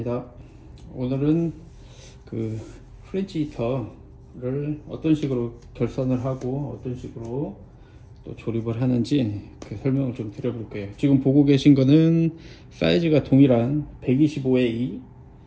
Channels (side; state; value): both; identical; correlation 1.00